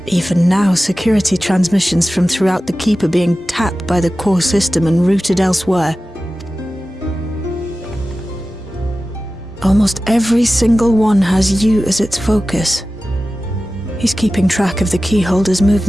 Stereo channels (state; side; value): normal; both; correlation 0.95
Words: Even now, security transmissions from throughout the Keep are being tapped by the core system and routed elsewhere. Almost every single one has you as its focus. He's keeping track of the keyholder's